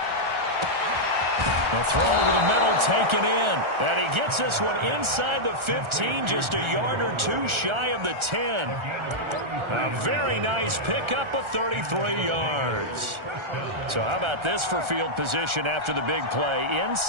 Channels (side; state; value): left; late; 1.4 ms